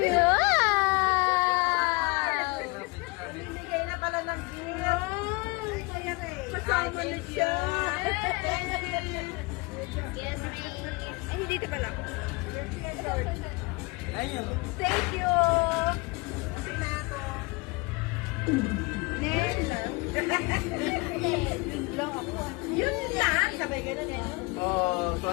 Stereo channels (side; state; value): right; quieter; 26.5 dB